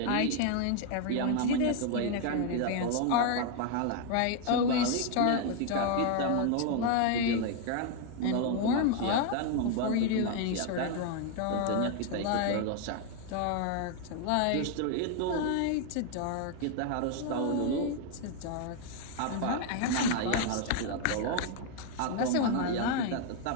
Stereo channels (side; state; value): both; different; correlation 0.00